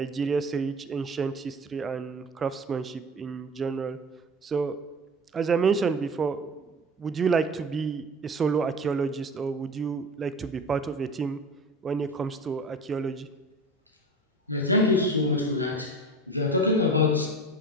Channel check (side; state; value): both; normal; correlation 0.34